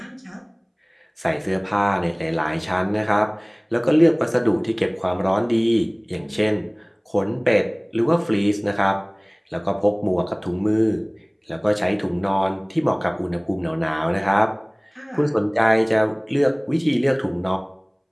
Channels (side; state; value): both; identical; correlation 1.00